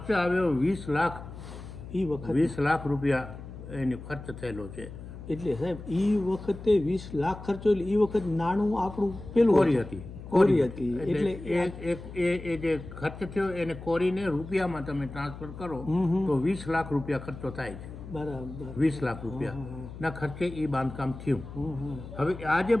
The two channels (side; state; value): left; noise; hum, 13 dB below the sound